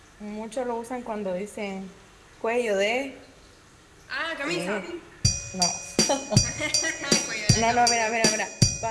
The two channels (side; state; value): both; identical; correlation 1.00